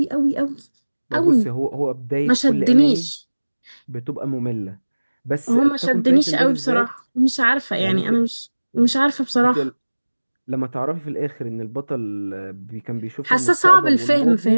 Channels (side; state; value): both; inverted; correlation -1.00